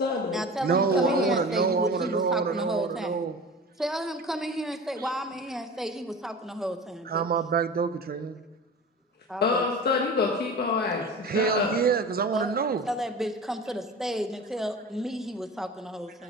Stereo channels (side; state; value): both; normal; correlation 0.35